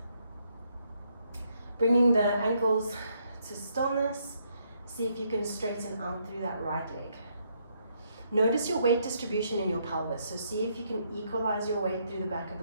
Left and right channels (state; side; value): inverted; both; correlation -0.74